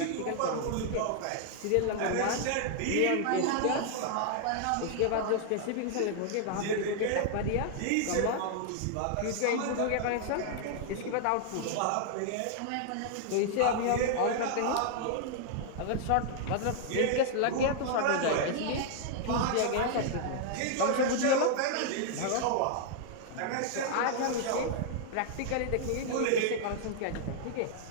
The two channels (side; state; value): both; different; correlation 0.00